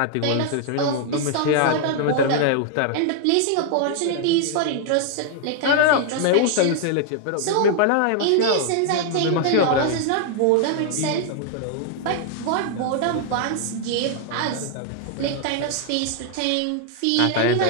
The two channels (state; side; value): different; both; correlation 0.00